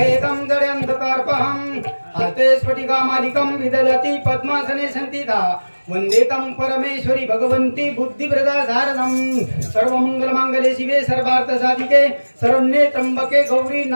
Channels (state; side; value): inverted; both; correlation -1.00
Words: जड्यन्धकार्पहं। हस्ते स्फटिकामालिकं विदधति पद्मासने संस्थिता वन्दे तं परमेश्वरी भगवन्ती बुद्धिप्रदा शारदं। सर्वमंगलमांगल्ये शिवे सर्वार्थसाधिके शरण्ये त्र्यंबके गौरी